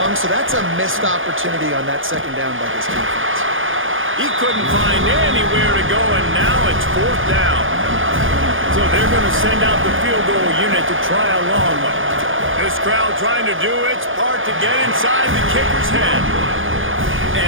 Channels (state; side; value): late; left; 0.58 ms